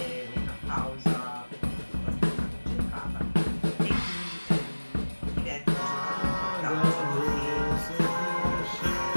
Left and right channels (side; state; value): both; inverted; correlation -1.00